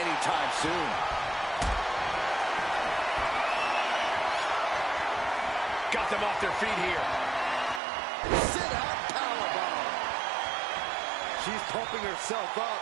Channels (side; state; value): left; drops out; at 7.8 s